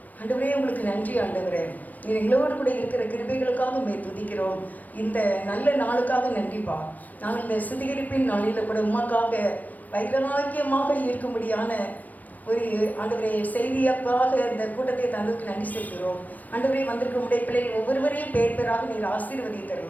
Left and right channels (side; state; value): right; late; 0.080 ms